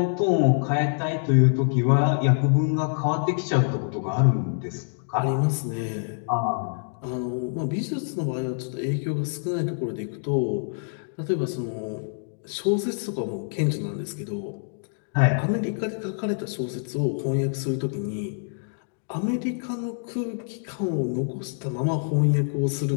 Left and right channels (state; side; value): silent; right; digital silence